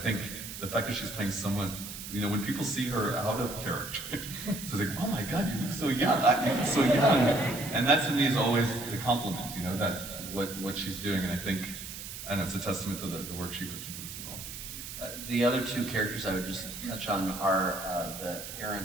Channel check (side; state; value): right; noise; hiss, 10 dB below the sound